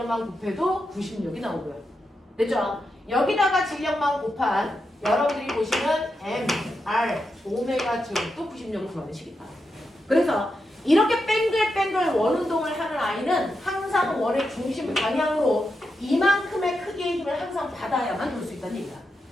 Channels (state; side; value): normal; both; correlation 0.86